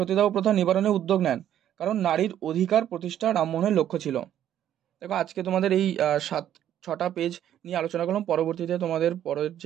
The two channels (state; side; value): quieter; left; 10.9 dB